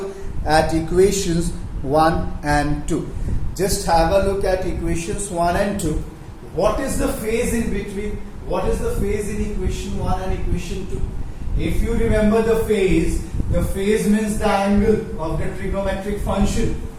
at equations 1 and 2. Just have a look at equations 1 and 2. What is the phase in between? What is the phase in equation 1 and equation 2? If you remember the phase means the angle of the trigonometric function.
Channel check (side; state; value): both; identical; correlation 1.00